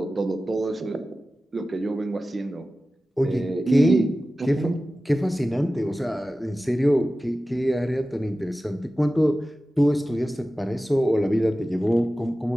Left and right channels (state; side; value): normal; both; correlation 0.95